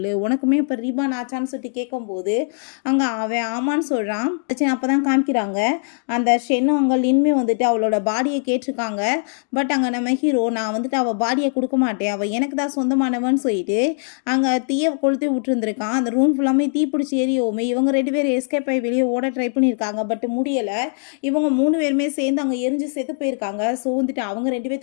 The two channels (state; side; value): silent; right; digital silence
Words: உனக்குமே இப்போ ரீபான் ஆச்சான்னு சொல்லிட்டு கேட்கும்போது அங்கே அவன் ஆமான்னு சொல்கிறான். அப்போ தான் காமிக்கிறாங்க அந்த ஷென்னும் அங்கே லின்மே வந்துட்டு அவளோட பாடியை கேட்டிருக்காங்க. பட் அங்கே நம்ம ஹீரோ நான் வந்துட்டு அவள் பாடியை கொடுக்க மாட்டேன், அவள் எனக்கு தான் சொந்தமானவன்னு சொல்லிட்டு அங்கே தீயை கொளுத்தி விட்டுருந்துருக்கான். அந்த ரூம் ஃபுல்லாமே தீ பிடிச்சி எரியோமே. இவங்க 2 பேர் எஸ்கேப் ஆகி வெளியே ஓட ட்ரை பண்ணியிருக்காங்க, பட் முடியலை. இவங்க 3 பேருமே சேர்ந்து அங்கே எரிஞ்சு செத்து போயிருக்காங்க. ஸோ வந்துட்டு அவங்க 2